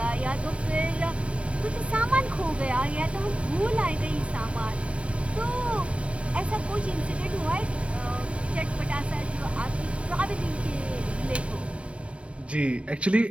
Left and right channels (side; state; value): left; late; 0.061 ms